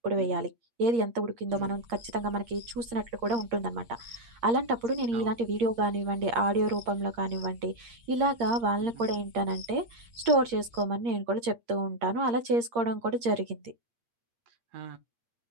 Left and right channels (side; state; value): left; late; 8.6 ms